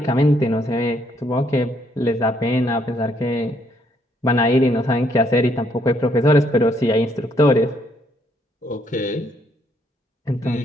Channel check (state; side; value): normal; both; correlation 0.70